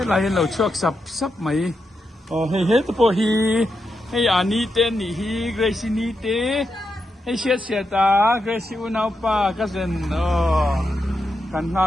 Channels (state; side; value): normal; both; correlation 0.85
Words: lai hen lo chuak sap mai. Hey hey to hi hey ani ten ni hi Grace ni te hey sia ta Grace unau pa cousin kan